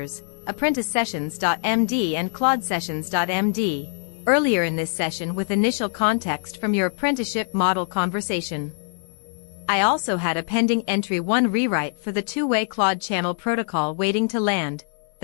apprentice sessions.md and Claude sessions.md, earlier in this session with initial context from your apprenticeship model conversation. I also had a pending entry 1 rewrite for the two-way Claude channel protocol waiting to land.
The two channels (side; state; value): right; silent; digital silence